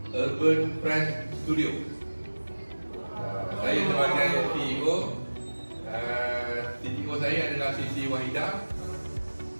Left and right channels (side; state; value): both; inverted; correlation -1.00